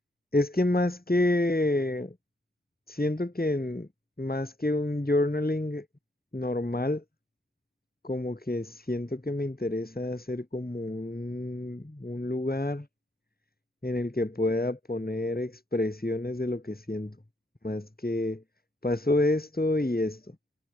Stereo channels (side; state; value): both; normal; correlation 0.72